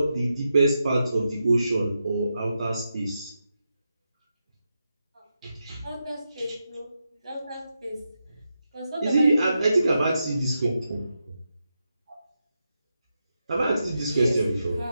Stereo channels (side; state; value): both; inverted; correlation -0.87